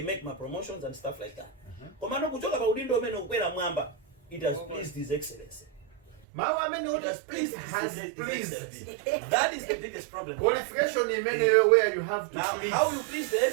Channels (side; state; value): left; drops out; at 6.2 s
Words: make my promotions and stuff like that. It has pleased His Excellency. It has pleased His Excellency. That is the biggest problem. Qualification in many where you have to now, please. how you please the